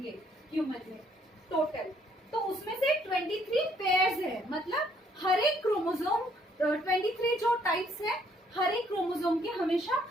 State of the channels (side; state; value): both; normal; correlation 0.66